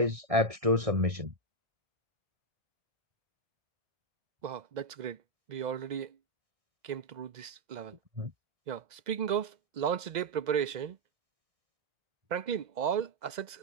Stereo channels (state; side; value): late; left; 2.0 ms